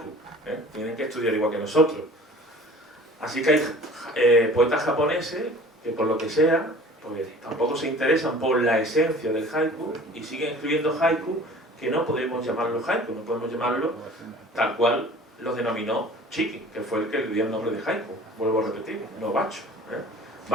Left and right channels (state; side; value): normal; both; correlation 0.46